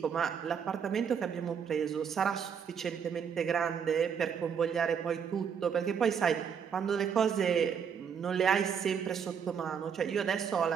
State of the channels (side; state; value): left; quieter; 7.3 dB